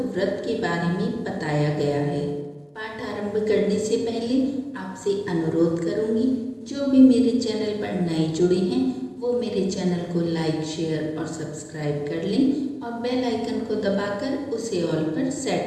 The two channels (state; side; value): identical; both; correlation 1.00